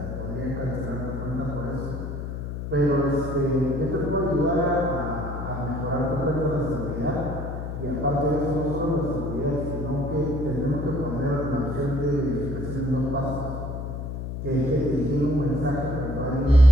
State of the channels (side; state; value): left; noise; hum, 6 dB below the sound